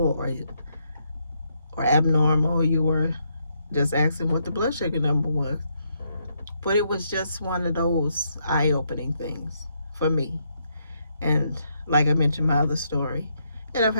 or abnormal? You were just asking what the blood sugar number was. But it was just one of those eye-opening things for me. And like I mentioned, my other story, and I've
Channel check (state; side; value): inverted; both; correlation -0.77